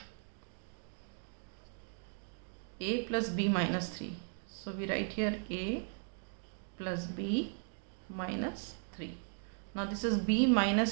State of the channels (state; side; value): silent; left; 53 dB below the other